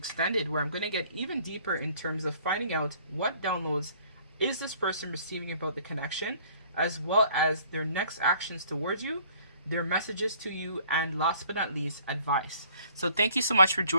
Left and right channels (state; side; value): inverted; both; correlation -0.57